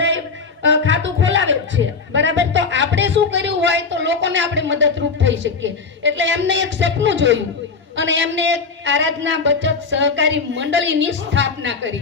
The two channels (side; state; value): right; quieter; 4.8 dB